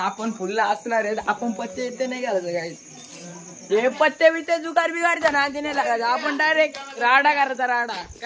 फुलला असणार आहेत. आपण पत्ते येते नाही घालायचं काय हे पत्ते बित्ते जुगार बिगारचा ना ते नाही लागायचं. आपण डायरेक्ट राडा करायचा राडा.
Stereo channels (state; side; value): identical; both; correlation 1.00